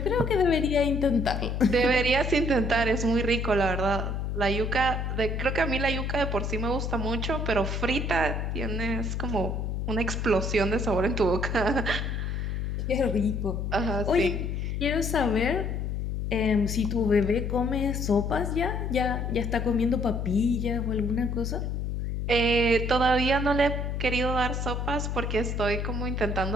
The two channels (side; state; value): left; noise; hum, 2 dB below the sound